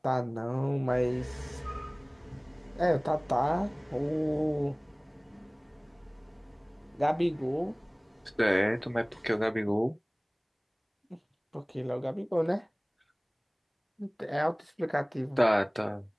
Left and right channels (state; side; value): identical; both; correlation 1.00